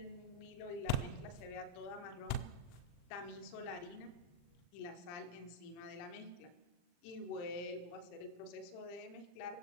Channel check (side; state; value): right; late; 40 ms